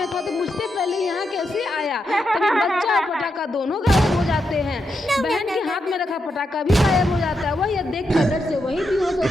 था, तो मुझसे पहले यहाँ कैसे आया। तभी बच्चा और पटाखा दोनों गायब हो जाते हैं। बहन के हाथ में रखा पटाखा भी गायब हो जाता है। वह यह देखकर डर से वहीं बेहोश हो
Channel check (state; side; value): normal; both; correlation 0.83